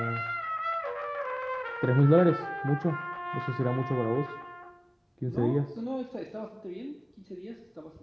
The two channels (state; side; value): identical; both; correlation 1.00